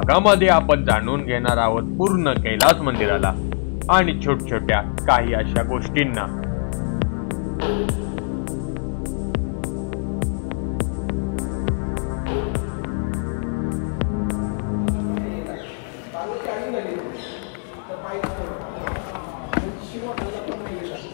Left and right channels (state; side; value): silent; right; 59 dB below the other